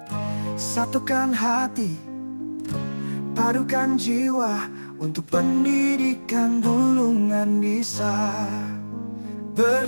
Satukan hati, padukan jiwa, untuk pendidikan Bulungan bisa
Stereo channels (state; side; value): inverted; both; correlation -1.00